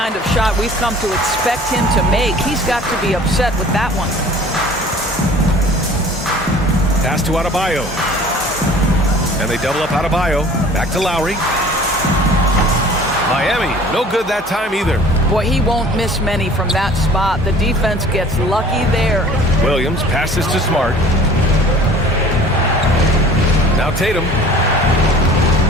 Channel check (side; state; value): both; normal; correlation 0.48